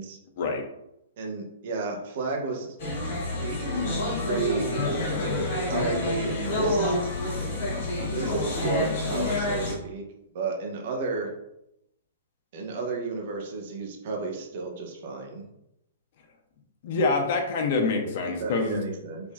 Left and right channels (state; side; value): inverted; both; correlation -0.38